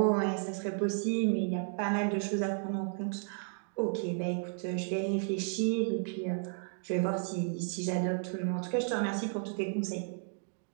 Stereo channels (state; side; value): silent; left; 56 dB below the other